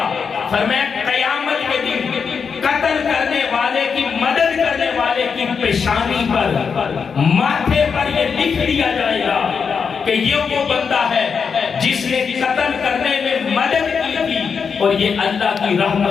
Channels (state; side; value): quieter; right; 6.0 dB